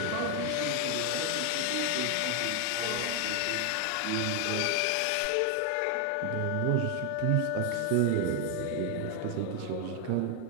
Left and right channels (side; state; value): both; different; correlation 0.01